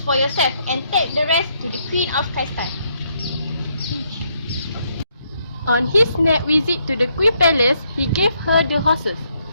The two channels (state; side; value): inverted; both; correlation -0.74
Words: for yourself and take the rest to the Queen of Kaistan. On his next visit to the Queen Palace, he gave her the horses.